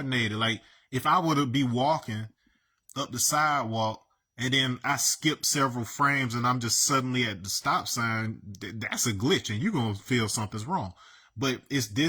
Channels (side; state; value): both; identical; correlation 1.00